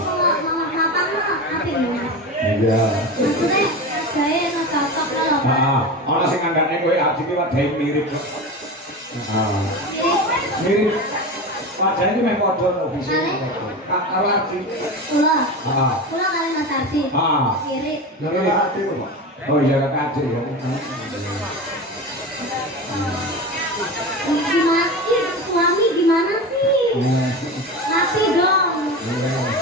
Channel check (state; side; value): normal; both; correlation 0.26